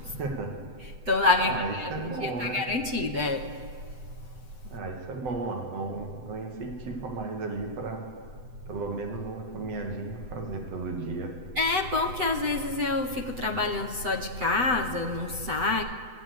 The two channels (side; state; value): left; late; 7.9 ms